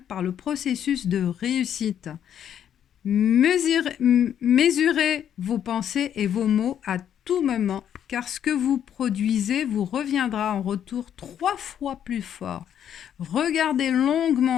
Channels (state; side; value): quieter; right; 9.5 dB